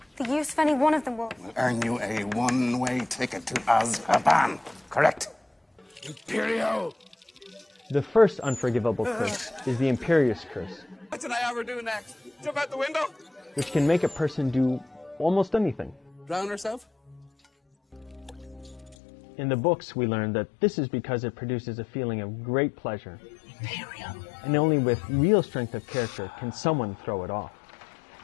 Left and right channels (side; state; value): right; drops out; at 18.9 s